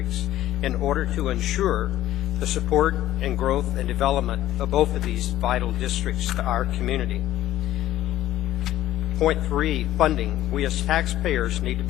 in order to ensure the support and growth and development of both of these vital districts to our community. Point three, funding. We as taxpayers need to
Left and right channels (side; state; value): right; quieter; 13.6 dB